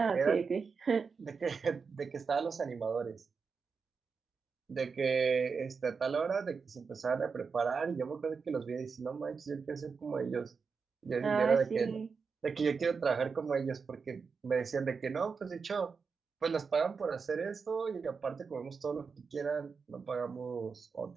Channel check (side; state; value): left; quieter; 5.3 dB